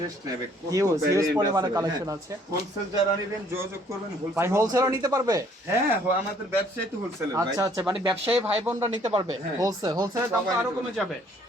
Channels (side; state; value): both; normal; correlation 0.61